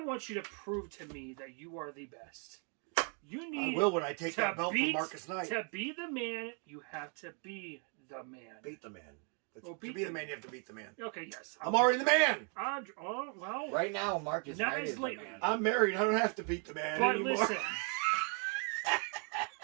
you to prove to me that you are the best. You need. I will when I take that belt from Marcus Knight. To be the man, you have to be the man. Beat the man. To be the man, you have to beat the man. Okay, yes. I'm already the man. Well. Right now, Marcus Knight is the man. I'm married. I don't have to beat the man anymore.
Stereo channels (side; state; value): left; quieter; 39.1 dB